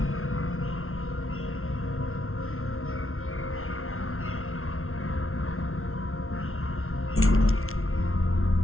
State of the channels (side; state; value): right; late; 0.62 ms